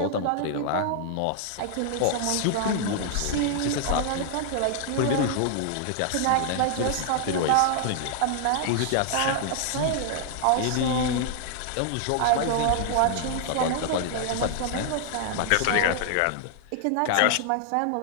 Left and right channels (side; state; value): both; different; correlation 0.00